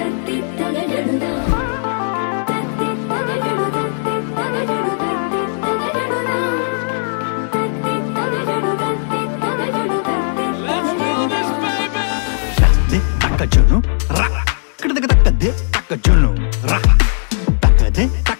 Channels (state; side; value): silent; right; digital silence